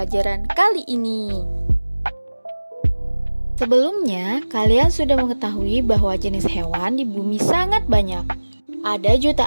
kali ini. Sebelumnya, kalian sudah mengetahui bahwa jenis hewan di bumi sangat banyak. Ada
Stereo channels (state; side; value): inverted; both; correlation -1.00